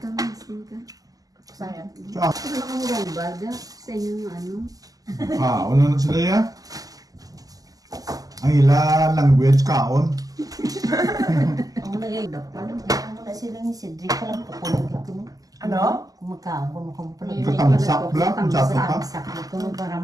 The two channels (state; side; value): late; left; 0.17 ms